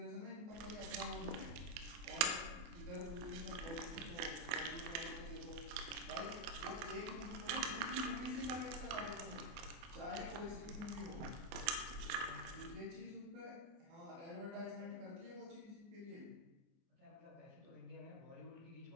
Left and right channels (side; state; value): left; late; 24 ms